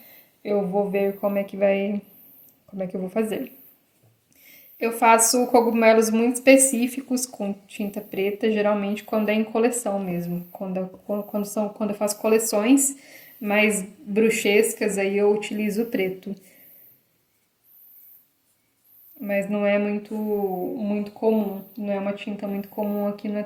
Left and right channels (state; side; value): identical; both; correlation 1.00